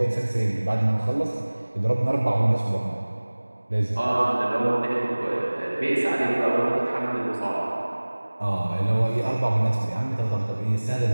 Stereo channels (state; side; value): inverted; both; correlation -1.00